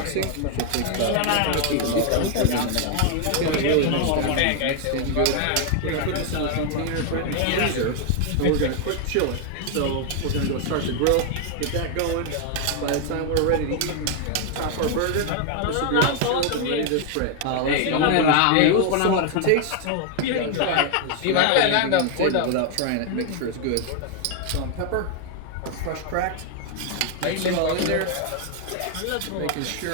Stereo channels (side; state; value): both; different; correlation 0.00